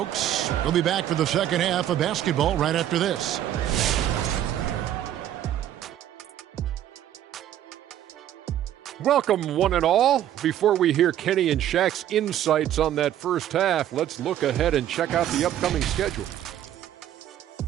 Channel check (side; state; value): left; quieter; 11.5 dB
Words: We'll be back for the second half of basketball right after this. Welcome, one and all. Before we hear Kenny and Shaq's insights on that first half, let's look ahead and check out the upcoming schedule.